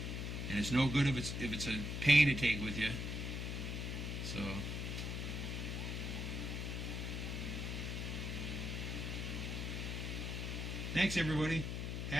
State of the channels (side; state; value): left; noise; hum, 3 dB below the sound